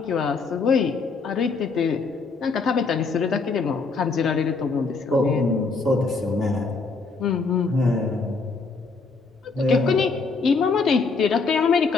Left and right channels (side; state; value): right; quieter; 4.4 dB